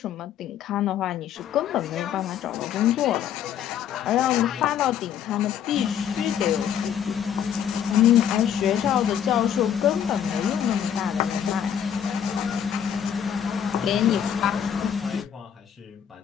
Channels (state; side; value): quieter; right; 9.0 dB